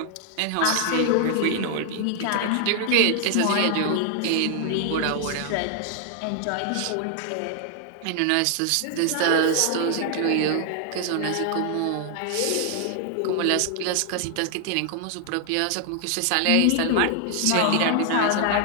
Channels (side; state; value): both; different; correlation 0.00